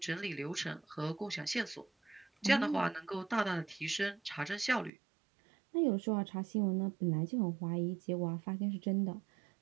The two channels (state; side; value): drops out; left; at 4.9 s